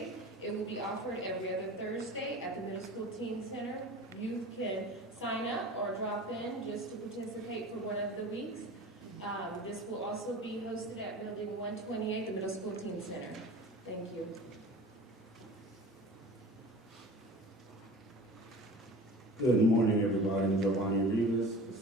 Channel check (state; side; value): normal; both; correlation 0.38